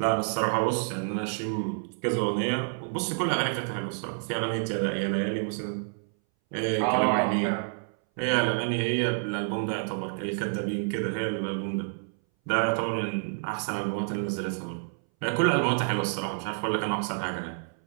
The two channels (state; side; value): silent; left; 59 dB below the other